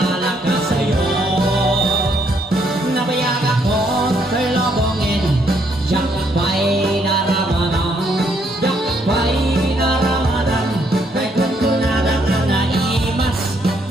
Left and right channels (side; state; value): both; normal; correlation 0.71